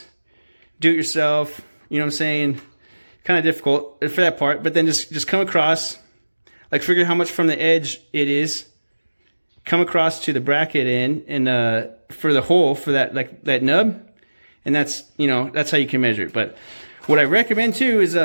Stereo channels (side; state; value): both; inverted; correlation -1.00